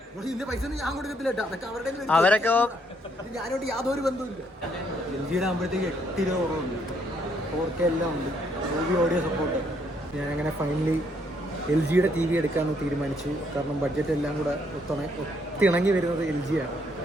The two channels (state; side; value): normal; both; correlation 0.71